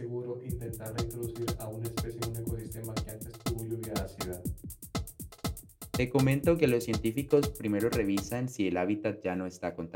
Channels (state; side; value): identical; both; correlation 1.00